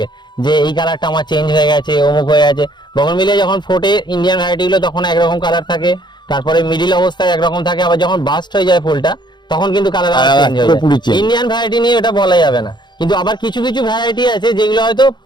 যে এই কালারটা আমার চেঞ্জ হয়ে গেছে, অমুক হয়ে গেছে। বোগেনভিলিয়া যখন ফোটে ইন্ডিয়ান ভ্যারাইটি গুলো তখন একরকম কালার থাকে, তারপরে মিডিল অবস্থায় একরকম থাকে, আবার যখন বাস্ট হয়ে যায় ফুলটা তখন কিন্তু কালার আবার চেঞ্জ হয়ে পুরোপুরি যায়। change। ইন্ডিয়ান ভ্যারাইটি নিয়ে এটা বলা যাবে না, কিন্তু আবার কিছু কিছু ভ্যারাইটি আছে যেগুলো হয়তো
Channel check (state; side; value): late; right; 0.21 ms